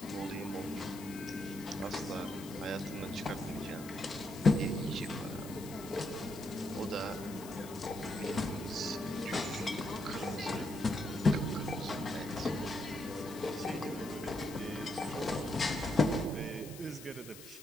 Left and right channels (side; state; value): left; noise; hiss, 15 dB below the sound